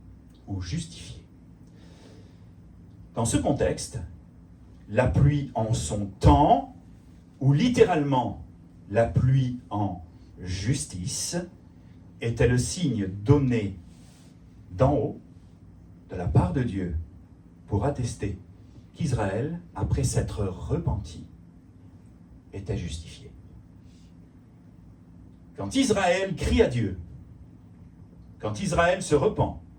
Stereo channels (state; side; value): identical; both; correlation 1.00